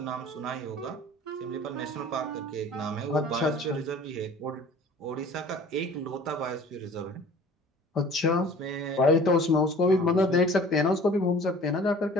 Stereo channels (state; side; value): normal; both; correlation 0.47